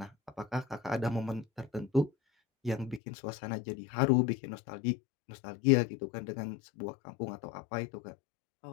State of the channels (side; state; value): right; drops out; at 3.0 s